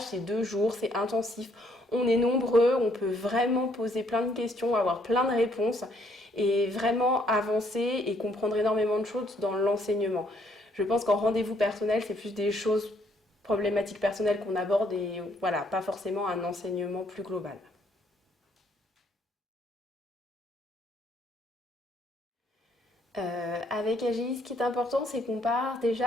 c'est 2 jours, c'est intensif. On est nombreux, on peut vraiment poser plein de questions, avoir plein de réponses et vraiment avancer et comprendre énormément de choses dans l'enseignement. Je pense qu'en rendez-vous personnel, c'est plus des choses problématiques personnelles qu'on aborde et voilà, pas forcément un enseignement plus global. Avec AGI, ce qui est important, c'est qu'on part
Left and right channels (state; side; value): normal; both; correlation 0.68